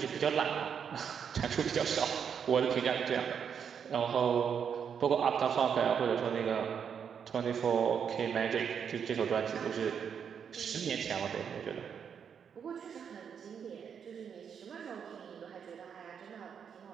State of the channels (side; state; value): left; quieter; 7.4 dB